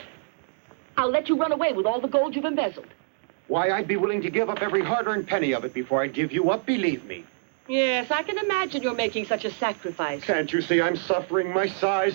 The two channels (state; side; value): silent; left; digital silence